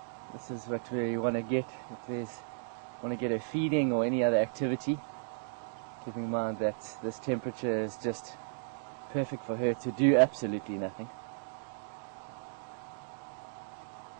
This is what we want to get. If there's want to get her feeding or any other activity, keeping in mind that this temperature is just perfect for her to do absolutely nothing.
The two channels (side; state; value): left; silent; digital silence